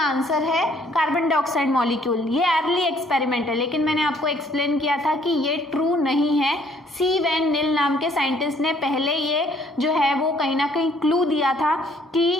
आंसर है कार्बन डाइऑक्साइड मॉलिक्यूल। ये अर्ली एक्सपेरिमेंट है, लेकिन मैंने आपको एक्सप्लेन किया था कि ये ट्रू नहीं है। सी वैन निल नाम के साइंटिस्ट ने पहले ये जो है वो कहीं ना कहीं क्लू दिया था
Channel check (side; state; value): both; normal; correlation 0.62